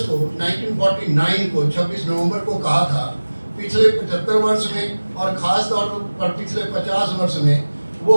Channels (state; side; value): inverted; both; correlation -1.00